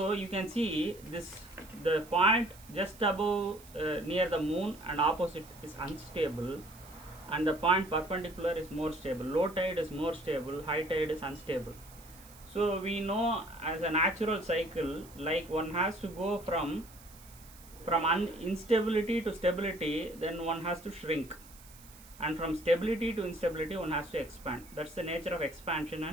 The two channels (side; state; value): right; noise; hiss, 21 dB below the sound